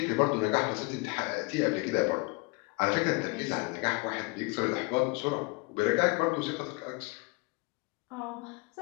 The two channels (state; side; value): quieter; right; 27.5 dB